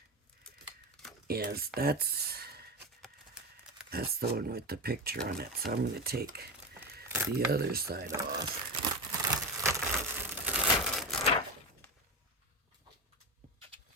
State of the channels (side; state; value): both; normal; correlation 0.20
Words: is. That's the one with the picture on it. So I'm going to take the other side off.